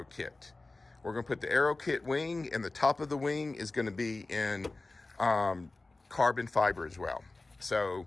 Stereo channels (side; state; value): right; quieter; 3.2 dB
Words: kit. We're going to put the Aero kit wing, and the top of the wing is going to be in carbon fiber as well. So